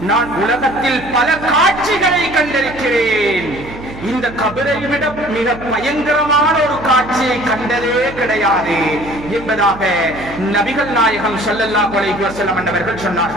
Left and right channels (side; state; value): right; noise; hum, 15 dB below the sound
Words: நான் உலகத்தில் பல காட்சிகளை கண்டிருக்கிறேன், இந்த கபரை விட மிக பயங்கரமான ஒரு காட்சியை கண்டதே கிடையாது என்பதாக நபிகள் நாயகம் ஸல்லல்லாஹு அலைஹி வஸல்லம் அவர்கள்